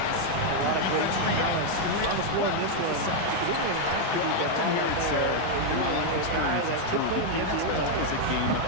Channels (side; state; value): both; different; correlation 0.00